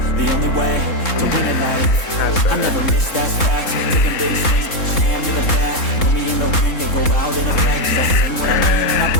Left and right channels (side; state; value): right; late; 3.7 ms